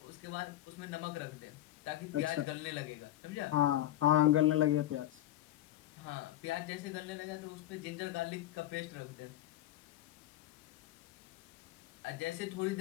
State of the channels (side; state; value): right; quieter; 13.7 dB